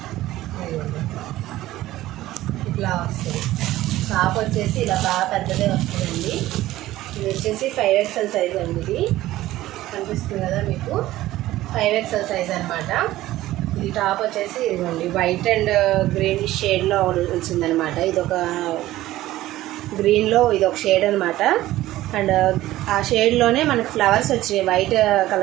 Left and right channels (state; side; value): quieter; left; 15.7 dB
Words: ఇట్లా వస్తుంది. టాప్ వచ్చేసి ఇలా బాగా పెద్దదే వస్తుందండి. ఇది వచ్చేసి 5XL సైజ్ అండి. ఇది కనిపిస్తుంది కదా మీకు, 5XL సైజ్ అనమాట. ఇది టాప్ వచ్చేసి ఇదిగోండి వైట్ అండ్ గ్రీన్ షేడ్లో వచ్చిందనమాట. ఇది ఒక గ్రీన్లో ఇది ఒక షేడ్ అనమాట. అండ్ ఆ షేడ్లోనే మనకి ఫ్లవర్స్ వచ్చినాయి. వైట్